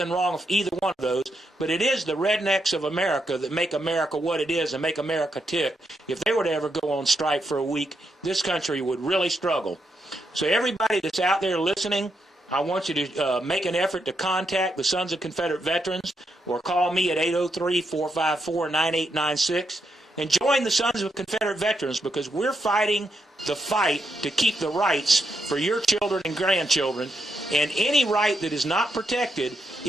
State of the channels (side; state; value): both; normal; correlation 0.81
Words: wrong with either one of those, but it is the rednecks of America that make America what it is and make America tick. If they were to ever go on strike for a week, this country would really struggle. So everybody that's out there listening, I want you to make an effort to contact the Sons of Confederate Veterans or call me at 803-454-9896 and join the Sons of Confederate Veterans, because we're fighting the fight to keep the rights for your children and grandchildren, and any right that is not protected